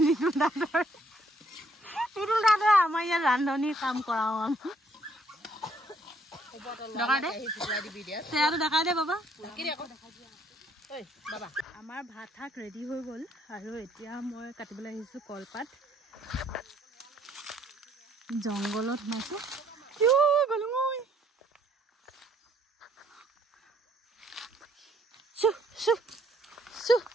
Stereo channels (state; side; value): normal; both; correlation 0.66